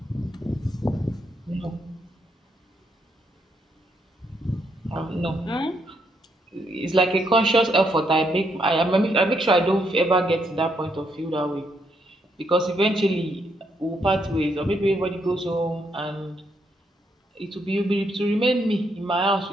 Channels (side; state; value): both; normal; correlation 0.76